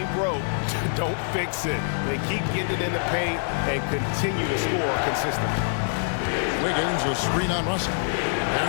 broke, don't fix it. They keep getting it in the paint and continue to score consistently. Wiggins, a screen on Russell.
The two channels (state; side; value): silent; right; digital silence